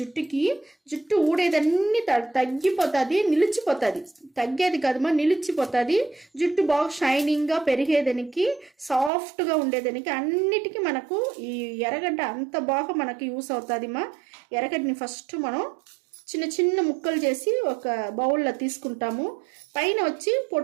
ఊడేదన్నీ తగ్గిపోతుంది, నిలిచిపోతుంది. తగ్గేది కదమ్మా, నిలిచిపోతుంది. జుట్టు బాగా షైనింగ్గా పెరిగేదానికి, సాఫ్ట్గా ఉండేదానికి అన్నిటికీ మనకు ఈ ఎర్రగడ్డ అంత బాగా మనకి యూస్ అవుతుందిమ్మా. ఎర్రగడ్డని ఫస్ట్ మనం చిన్న చిన్న ముక్కలు చేసి ఒక బౌల్లో తీసుకుంటాము. పైన వచ్చి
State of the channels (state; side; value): drops out; left; at 9.1 s